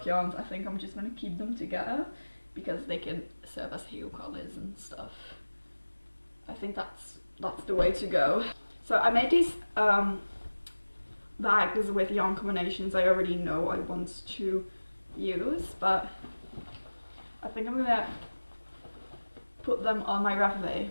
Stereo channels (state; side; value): inverted; both; correlation -1.00